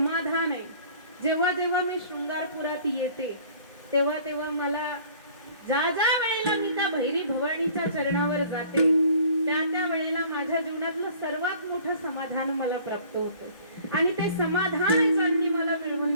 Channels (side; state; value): both; inverted; correlation -0.52